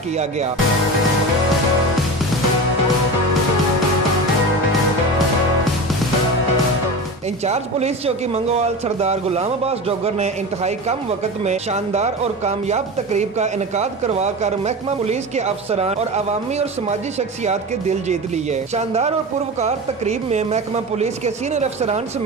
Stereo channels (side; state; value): both; normal; correlation 0.27